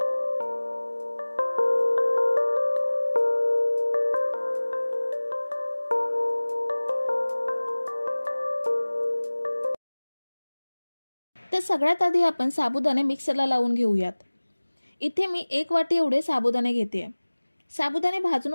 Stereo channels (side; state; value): both; inverted; correlation -1.00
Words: तर सगळ्यात आधी आपण साबुदाणे मिक्सरला लावून घेऊयात। इथे मी 1 वाटी एवढे साबुदाणे घेते। साबुदाणे भाजून